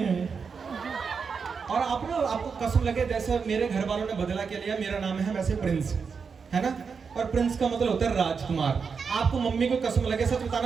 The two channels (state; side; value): quieter; left; 5.7 dB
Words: और आप ना, आपको कसम लगे, जैसे मेरे घर वालों ने बदला के लिया, मेरा नाम है वैसे प्रिंस, है ना। और प्रिंस का मतलब होता है राजकुमार। आपको मम्मी को कसम लगे, सच